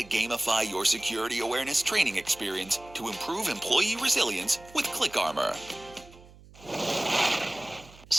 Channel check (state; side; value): noise; right; hum, 22 dB below the sound